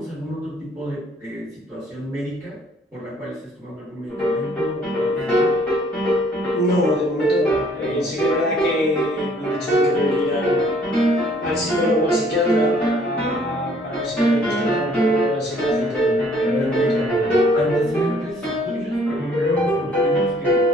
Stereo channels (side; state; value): both; normal; correlation 0.60